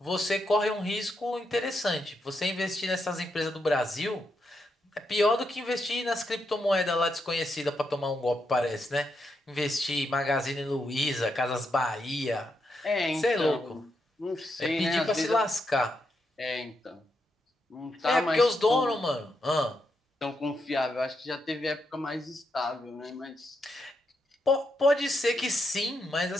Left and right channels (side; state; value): both; normal; correlation 0.82